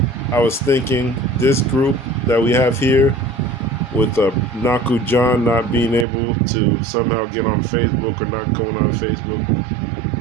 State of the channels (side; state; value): left; drops out; at 6.1 s